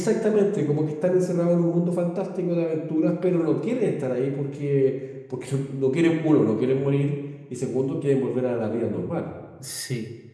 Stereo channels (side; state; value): both; identical; correlation 1.00